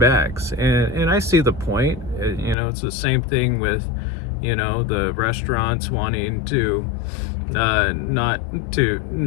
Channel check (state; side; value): drops out; right; at 2.6 s